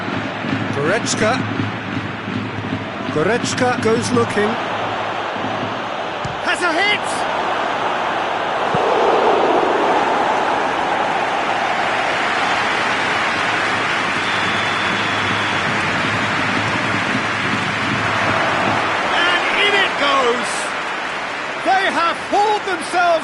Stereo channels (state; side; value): identical; both; correlation 1.00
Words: Goretzka. Goretzka goes looking. Has a hit! And in it goes! They have hauled